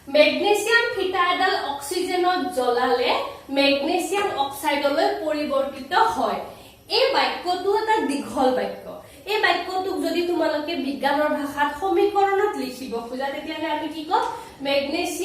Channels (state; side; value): identical; both; correlation 1.00